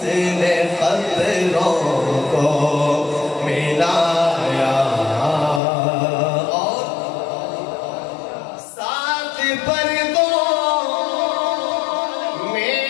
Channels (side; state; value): right; drops out; at 5.6 s